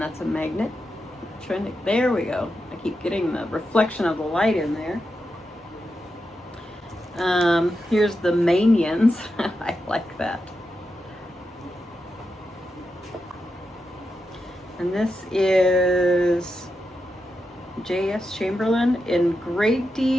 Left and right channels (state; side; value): normal; both; correlation 0.88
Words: a magnet. There we go. I keep getting the reflection of the light in there. Here's the Manians. I like that. And this is J.S. Chamberlain. In great